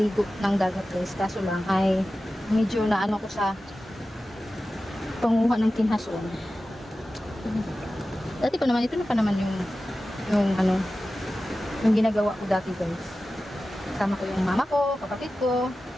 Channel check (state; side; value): normal; both; correlation 0.95